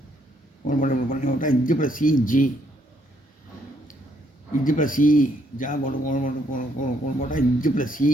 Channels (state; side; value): normal; both; correlation 0.71